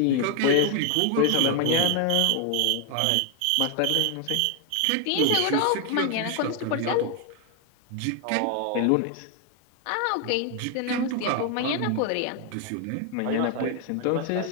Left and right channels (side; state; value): both; different; correlation 0.01